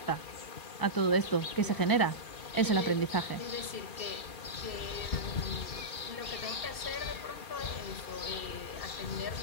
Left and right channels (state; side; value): late; right; 2.4 ms